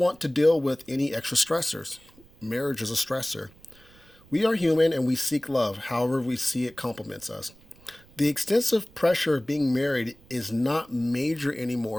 to deal with any extra stressors. Marriage is a stressor. We are human and we seek love, however we see it complements us. The extensive pressure of being married is not major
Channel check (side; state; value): right; noise; rumble, 26 dB below the sound